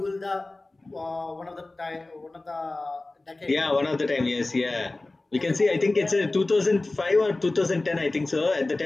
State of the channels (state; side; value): quieter; right; 3.0 dB